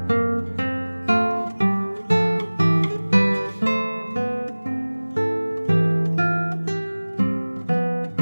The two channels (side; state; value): both; inverted; correlation -1.00